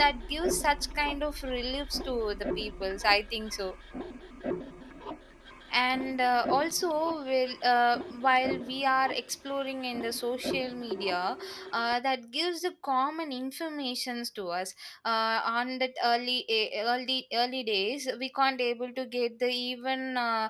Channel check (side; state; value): both; identical; correlation 1.00